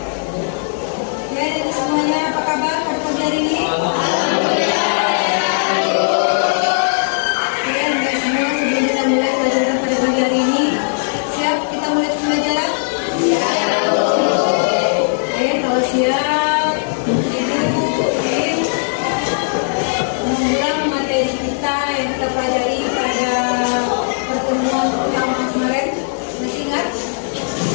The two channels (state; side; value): silent; right; 68 dB below the other